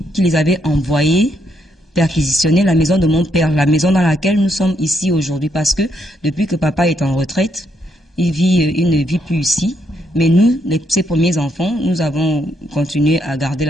qui les avait envoyés perquisitionner la maison de mon père, la maison dans laquelle nous sommes ici aujourd'hui, parce que depuis que papa est en retraite, il ne vit plus ici. Mais nous, ses premiers enfants, nous avons continué à garder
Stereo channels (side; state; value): both; normal; correlation 0.76